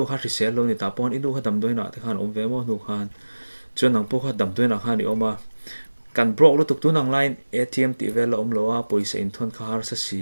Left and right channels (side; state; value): both; inverted; correlation -1.00